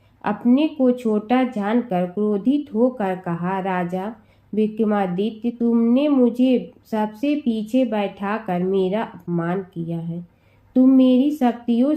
अपने को छोटा जानकर क्रोधित होकर कहा, राजा विक्रमादित्य, तुमने मुझे सबसे पीछे बैठाकर मेरा अपमान किया है। तुम मेरी शक्तियों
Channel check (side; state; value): both; identical; correlation 1.00